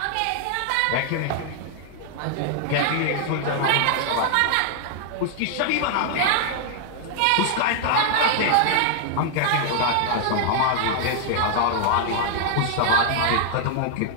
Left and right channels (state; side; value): different; both; correlation -0.01